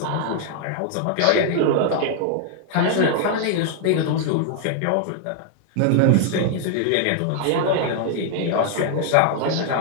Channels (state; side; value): different; both; correlation 0.00